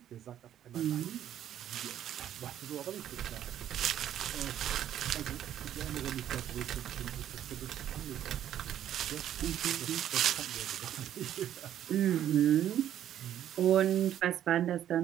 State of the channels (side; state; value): left; quieter; 11.0 dB